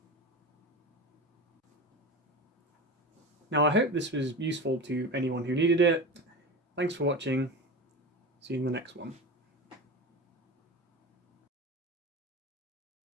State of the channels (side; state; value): both; normal; correlation 0.27